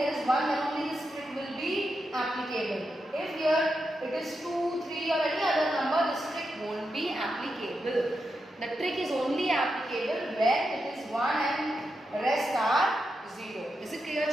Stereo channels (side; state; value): both; normal; correlation 0.86